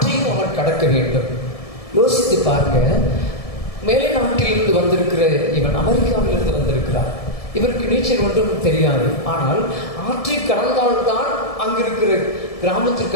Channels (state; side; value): late; right; 1.7 ms